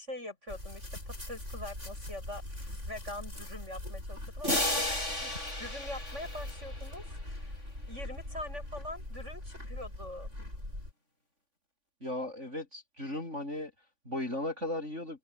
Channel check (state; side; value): late; left; 3.5 ms